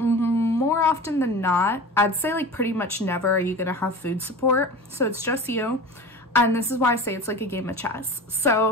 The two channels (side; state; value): both; normal; correlation 0.33